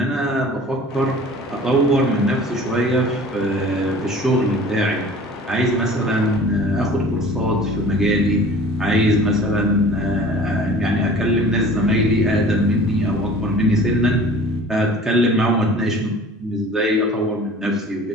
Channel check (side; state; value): both; normal; correlation 0.45